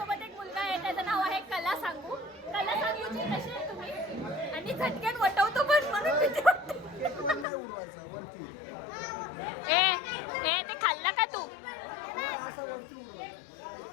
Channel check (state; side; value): drops out; right; at 7.5 s